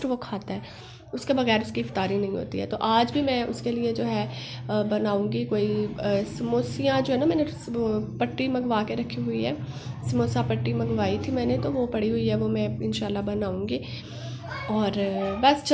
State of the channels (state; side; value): identical; both; correlation 1.00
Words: वो खाता है, उसके बगैर उसकी इफ्तारी नहीं होती है। तो आज भी मैं उसके लिए जो है बनाऊंगी कोई समोसियाँ जो है ना, मैंने पट्टी मंगवा के रखी हुई है, समोसा पट्टी मंगवाई थी मैंने, तो वो पड़ी हुई है, वो मैं इंशाल्लाह बनाऊंगी। और बस